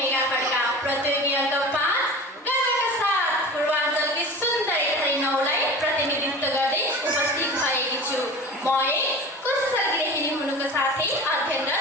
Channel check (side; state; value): both; normal; correlation 0.36